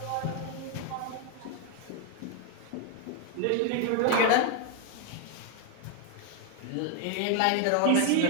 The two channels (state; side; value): different; both; correlation 0.00